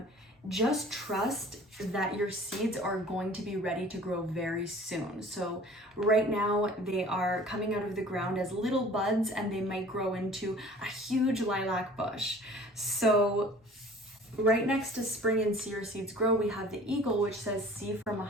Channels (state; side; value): normal; both; correlation 0.48